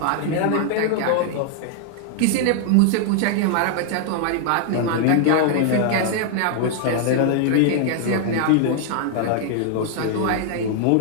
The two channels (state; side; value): different; both; correlation 0.00